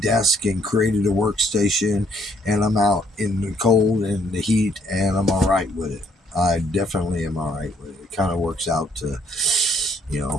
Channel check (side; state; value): both; normal; correlation 0.67